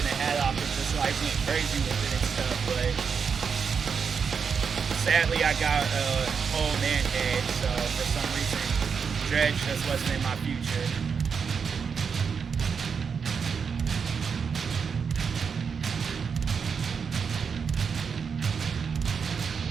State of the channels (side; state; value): left; quieter; 6.2 dB